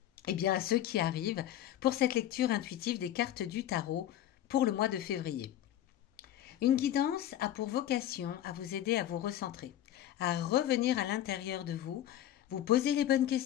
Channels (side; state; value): right; quieter; 12.1 dB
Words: à ceux qui arrivent pour cette lecture intuitive des cartes du tarot pour le mois de février. Une guidance a pour vocation à vous aider à vous recentrer, à revenir à l'intérieur de vous, vous poser les bonnes